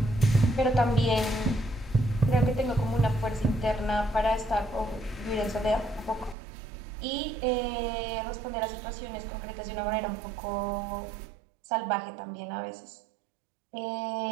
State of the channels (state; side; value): drops out; left; at 6.4 s